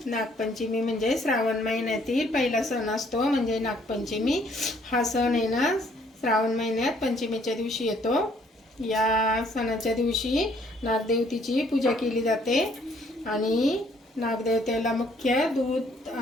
नागपंचमी म्हणजे श्रावण महिन्यातील पहिला सण असतो, म्हणजे नागपंचमी. हा सण आहे ना श्रावण महिन्यात पंचमीच्या दिवशी येतो. या सणाच्या दिवशी नागदेवतेची पूजा केली जाते आणि नागदेवतेला मुख्य दूध,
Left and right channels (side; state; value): both; normal; correlation 0.64